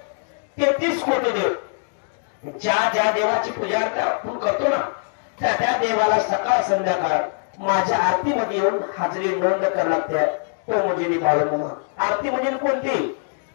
33 कोटी देव, ज्या ज्या देवाची पूजा आपण करतो ना त्या त्या देवाला सकाळ संध्याकाळ माझ्या आरतीमध्ये येऊन हाजरी नोंद करायला लागते. तो म्हणजे बाळूमामा. आरती म्हणजे कोणती,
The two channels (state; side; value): silent; right; digital silence